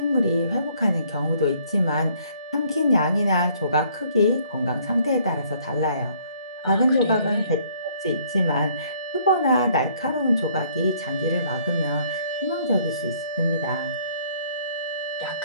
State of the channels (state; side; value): inverted; both; correlation -0.62